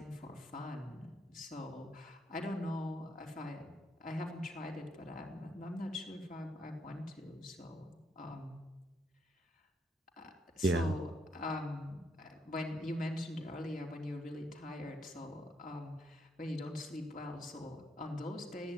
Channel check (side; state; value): both; normal; correlation 0.74